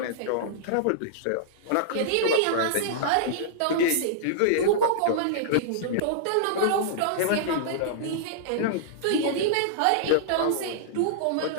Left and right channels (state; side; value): different; both; correlation -0.02